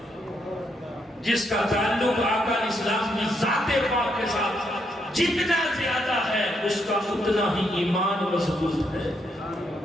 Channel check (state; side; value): normal; both; correlation 0.77